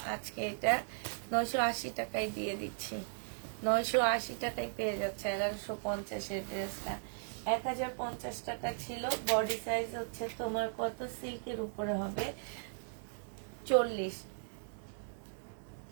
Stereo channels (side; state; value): left; silent; digital silence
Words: আজকে এটা 980 টাকায় দিয়ে দিচ্ছি। 980 টাকায় পেয়ে যাচ্ছে 1150 এর ড্রেসটা। 1050 টাকা ছিল। বডি সাইজ হচ্ছে তোমার কত, সিল্কের উপরে হবে 40।